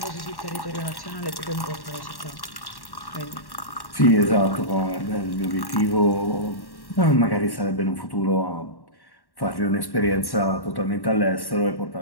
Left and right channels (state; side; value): late; right; 1.1 ms